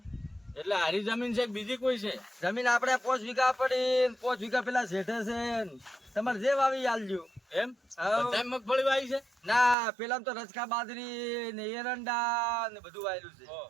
એટલે હારી જમીન છે કે બીજી કોઈ છે? જમીન આપણે 5 વીઘા પડી, 5 વીઘા પેલા શેઠે છે. તમારે જે વાવી આલજો. એમ હાઉ. બધાય મગફળી વાવી છે? ના પેલા તો રચકા બાજરી ને એરંડા ને બધું વાયેલું છે.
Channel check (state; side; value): drops out; left; at 9.8 s